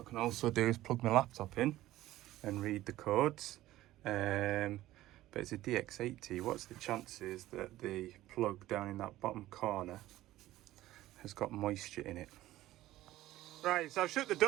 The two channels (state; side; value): quieter; left; 15.5 dB